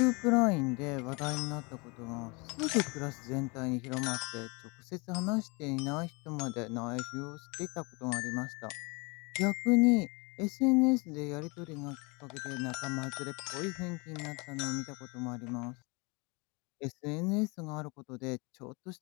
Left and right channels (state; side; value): quieter; right; 28.8 dB